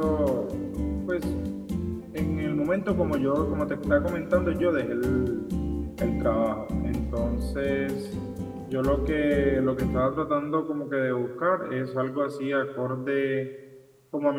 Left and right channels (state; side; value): identical; both; correlation 1.00